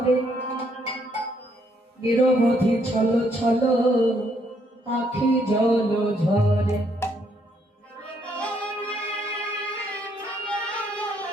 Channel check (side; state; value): both; normal; correlation 0.71